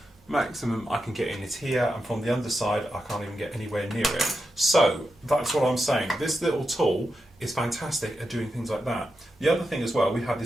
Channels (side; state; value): both; normal; correlation 0.87